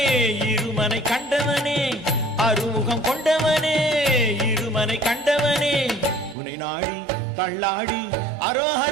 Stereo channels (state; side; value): drops out; left; at 6.4 s